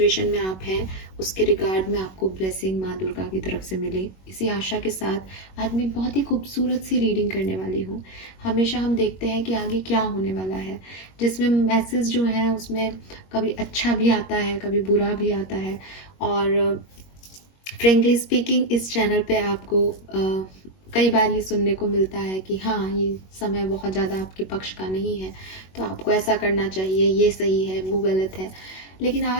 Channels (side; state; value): right; late; 21 ms